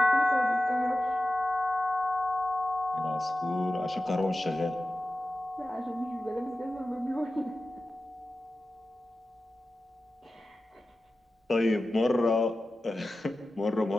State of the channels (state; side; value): normal; both; correlation 0.94